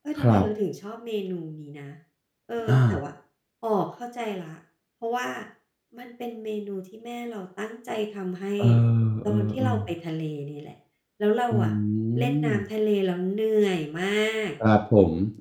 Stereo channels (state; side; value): identical; both; correlation 1.00